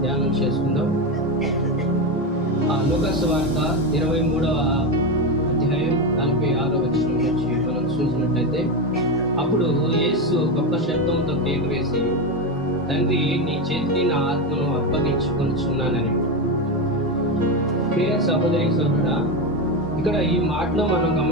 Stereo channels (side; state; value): both; normal; correlation 0.14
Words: ధ్యానం చేసుకుందాం. లూకా సువార్త 23వ అధ్యాయం 46వ వచనం నుంచి మనం చూసినట్లయితే, అప్పుడు యేసు గొప్ప శబ్దంతో కేక వేసి, తండ్రి, నీ చేతికి నా ఆత్మను అప్పగించుకొనుచున్నానని. ప్రియ సహోదరి సహోదరుడా, ఇక్కడ ఈ మాటలో మనం